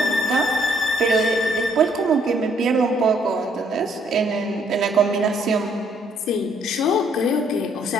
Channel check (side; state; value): both; normal; correlation 0.67